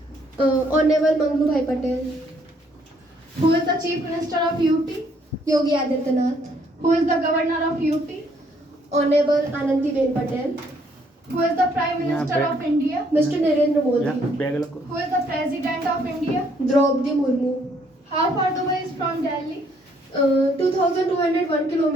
Honorable Manglu Bhai Patel. Who is the Chief Minister of UP? Yogi Adityanath. Who is the Governor of UP? Honorable Anandiben Patel. Who is the Prime Minister Yeah, of India? Mr. Narendra Modi. Bag रखो. Who is the President of India? Draupadi Murmu. How far Dubai is from Delhi? 2,201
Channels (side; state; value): both; normal; correlation 0.67